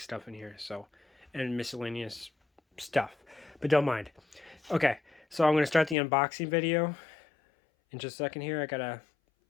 in here, so, and miscellaneous stuff, but don't mind. Okay, so I'm going to start the unboxing video in just a second here. I gotta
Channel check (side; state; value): right; drops out; at 6.0 s